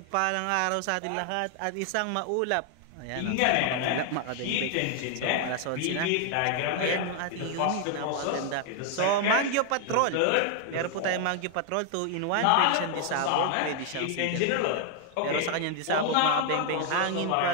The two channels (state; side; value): different; both; correlation 0.00